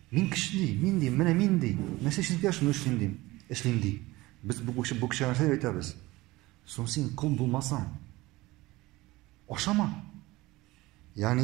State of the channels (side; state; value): left; quieter; 19.8 dB